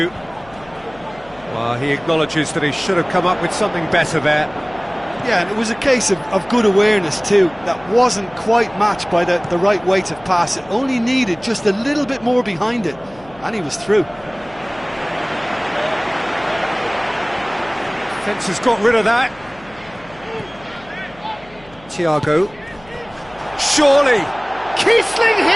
Well, he acknowledges that he should have come up with something better there. Yeah, and it was a case of good awareness too. That wasn't quite matched by the right weight of pass. It only needed just a little bit more behind it, and he was through. Defence has got rid of that. Thiago. Surely! Kiesling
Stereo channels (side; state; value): left; noise; hum, 24 dB below the sound